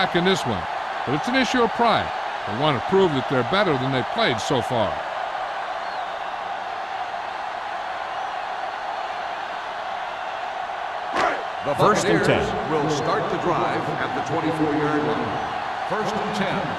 in this one, but it's an issue of pride. They want to prove that they're better than they've played so far. The 1st and 10. Will start the drive at the 24-yard line. 1st and 10.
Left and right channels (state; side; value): identical; both; correlation 1.00